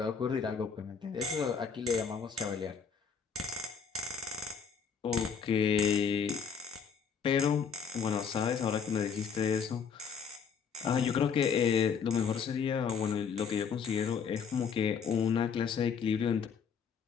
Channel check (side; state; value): right; quieter; 6.4 dB